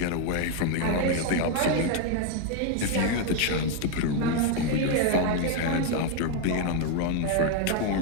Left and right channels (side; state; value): both; different; correlation 0.01